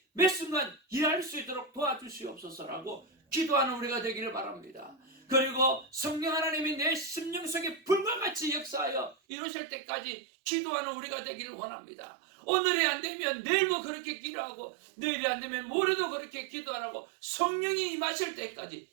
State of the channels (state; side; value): drops out; left; at 9.2 s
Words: 매 순간 일할 수 있도록 도와주시옵소서라고 기도하는 우리가 되기를 바랍니다. 그리고 성령 하나님이 내 심령 속에 불과 같이 역사하여 이루실 때까지 기도하는 우리가 되기를 원합니다. 오늘이 안 되면 내일도 그렇게 기도하고, 내일이 안 되면 모레도 그렇게 기도하라고 성령이 임하실